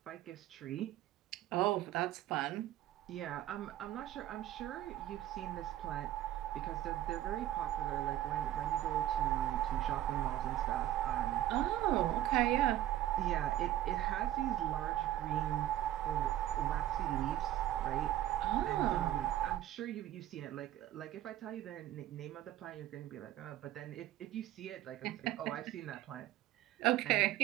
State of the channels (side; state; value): left; quieter; 13.5 dB